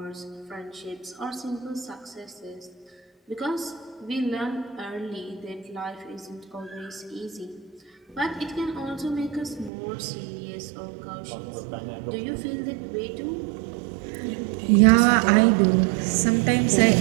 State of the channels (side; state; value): left; drops out; at 9.7 s